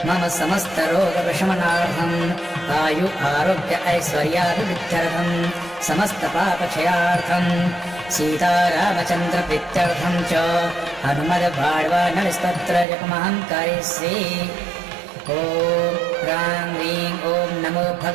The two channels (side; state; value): left; drops out; at 12.9 s